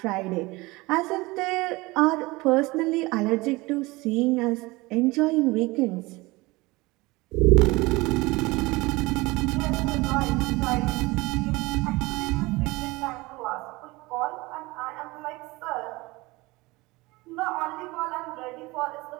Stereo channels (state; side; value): quieter; left; 22.3 dB